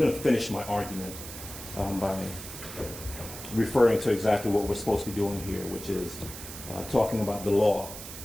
to finish my argument by referring to exactly what we're supposed to be doing here, which is talking about the law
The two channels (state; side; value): noise; right; hiss, 11 dB below the sound